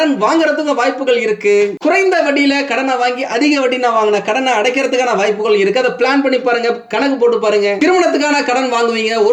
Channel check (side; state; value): both; identical; correlation 1.00